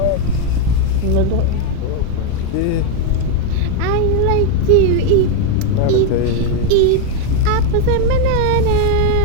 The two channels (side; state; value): both; different; correlation 0.01